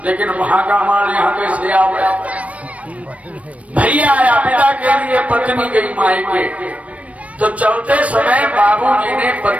लेकिन वहां का माल यहाँ कैसे आ गया। भैया आया पिता के लिए, पत्नी गई मायके। तो चलते समय बाबूजी ने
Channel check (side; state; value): left; late; 0.066 ms